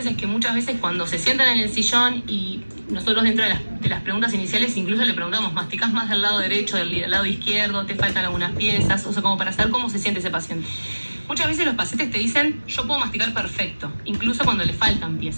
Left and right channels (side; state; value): both; inverted; correlation -1.00